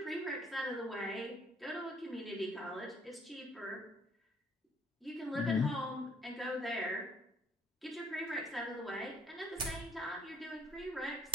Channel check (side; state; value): both; normal; correlation 0.61